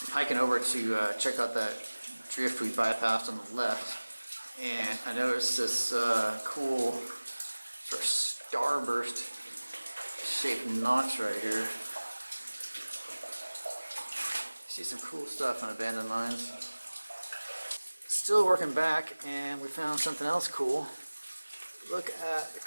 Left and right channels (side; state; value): both; inverted; correlation -1.00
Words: Hiking over to check out that drift we bypassed on the left. And I noticed this cool sort of starburst shaped notch right here. See some cool stuff on abandoned mines. Still working back, and we found something else cool. Look at the